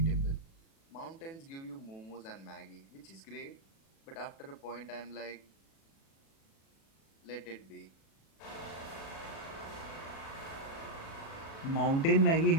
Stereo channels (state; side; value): late; right; 36 ms